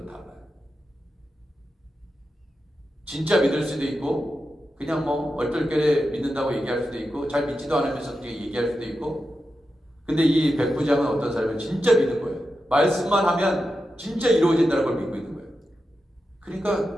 달라요. 진짜 믿을 수도 있고 그냥 뭐 얼떨결에 믿는다고 얘기할 수도 있고 잘 믿지도 않으면서 얘기할 수도 있고, 근데 이 백부장은 어떤 사람은 진짜 믿는 거예요. 말씀만 하면 진짜 이루어진다는 걸 믿고 있는 거예요. 그러니까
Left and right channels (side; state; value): both; normal; correlation 0.90